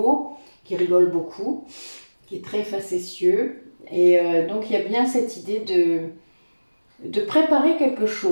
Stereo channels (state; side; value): inverted; both; correlation -1.00